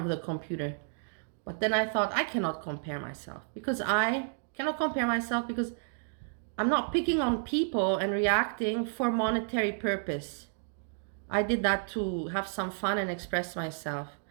the computer. But then I thought I cannot compare myself because I'm not picking on people and reacting for monetary purpose. I did that to have some fun and express myself.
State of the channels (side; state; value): left; silent; digital silence